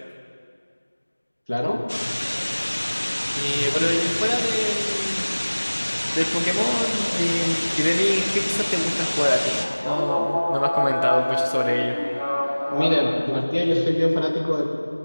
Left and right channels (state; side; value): inverted; both; correlation -1.00